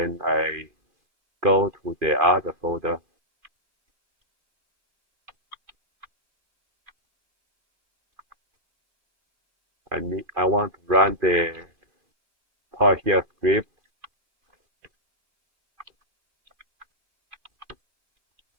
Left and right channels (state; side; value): late; left; 2.5 ms